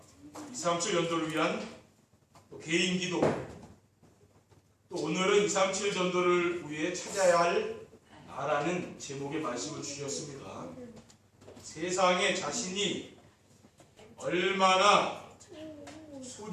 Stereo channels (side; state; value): both; identical; correlation 1.00